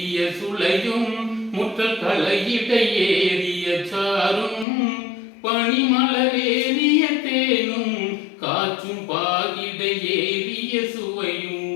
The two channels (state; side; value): drops out; right; at 4.7 s